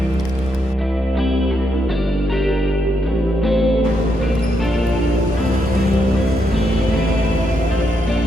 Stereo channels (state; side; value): normal; both; correlation 0.80